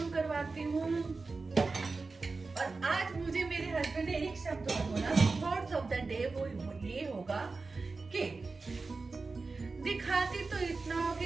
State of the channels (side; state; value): left; quieter; 4.0 dB